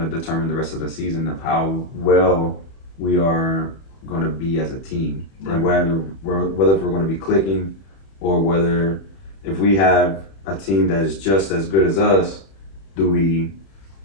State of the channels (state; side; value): late; right; 31 ms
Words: to determine the rest of the season of how well we are going to be as a team, and whether we're going to be clicking, or whether if we have a team that is just as good as us, do we